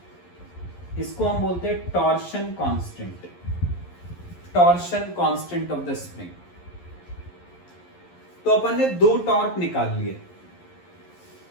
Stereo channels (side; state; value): right; late; 11 ms